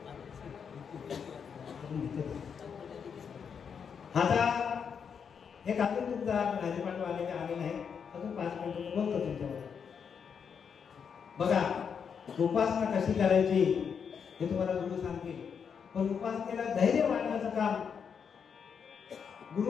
आता एक अजून तुमचा राजपाठ आलेले आले नाही, अजून 5 मिनिटं बोलतो तुमच्यावर. बघा, उपासना कशी करायची हे तुम्हाला गुरु सांगतील, पण उपासनेला धैर्य वाढण्याचं काम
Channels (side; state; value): right; quieter; 6.8 dB